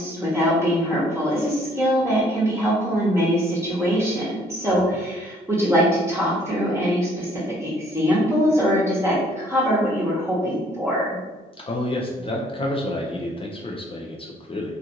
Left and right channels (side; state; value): both; normal; correlation 0.62